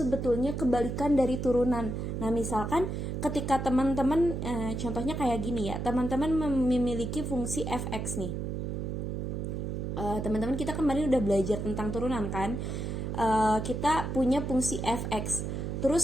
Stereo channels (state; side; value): noise; right; hum, 3 dB below the sound